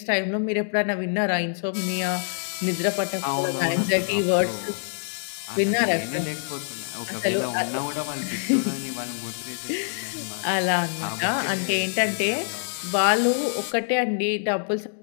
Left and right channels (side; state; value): right; silent; digital silence